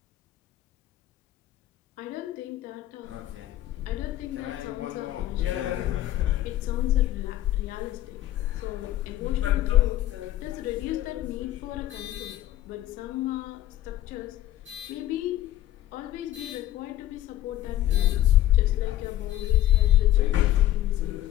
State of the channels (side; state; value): right; quieter; 13.9 dB